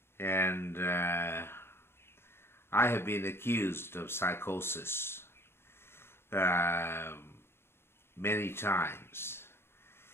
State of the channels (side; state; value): right; late; 0.12 ms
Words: and I have been accused of psychosis many times.